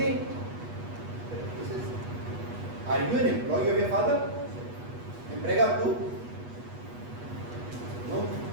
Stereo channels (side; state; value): left; late; 8.3 ms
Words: He says, are you an employee of your father? Empregado too? No,